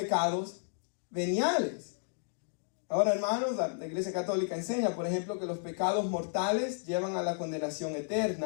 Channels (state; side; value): silent; right; digital silence